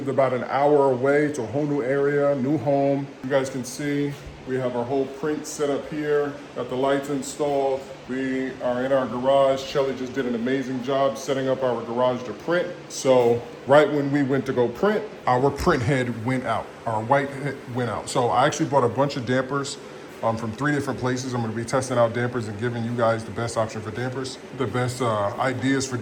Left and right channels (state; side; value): identical; both; correlation 1.00